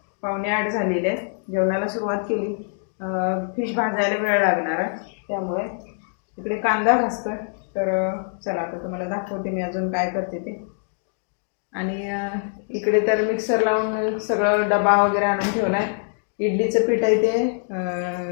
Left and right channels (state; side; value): silent; right; 63 dB below the other